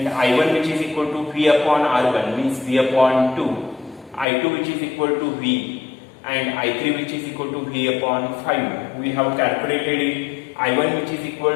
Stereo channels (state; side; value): drops out; right; at 4.2 s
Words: I1 which is equal to V upon R1 means V upon 2, I2 which is equal to V and I3 which is equal to V upon 5. We have calculated it, I1 which is equal